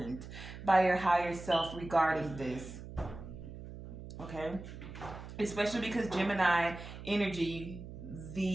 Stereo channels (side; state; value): right; noise; hum, 12 dB below the sound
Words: by your higher self regarding this. Okay? Especially because Gemini energy,